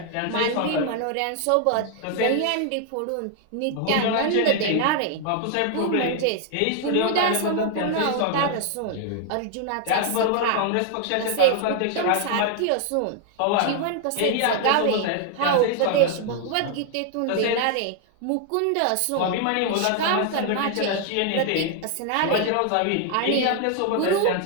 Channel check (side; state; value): both; different; correlation 0.00